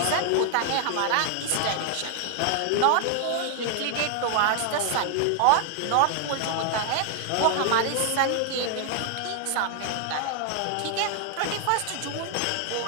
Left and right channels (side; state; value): both; different; correlation 0.00